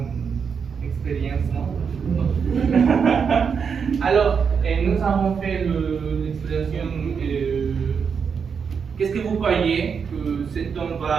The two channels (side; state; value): left; quieter; 6.3 dB